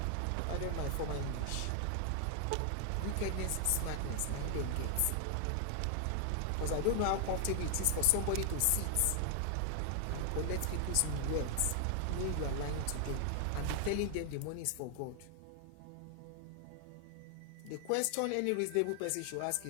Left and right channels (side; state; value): both; different; correlation 0.00